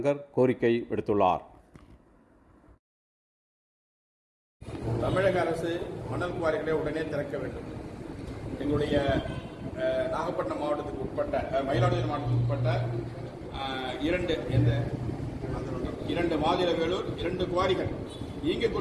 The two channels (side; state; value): both; identical; correlation 1.00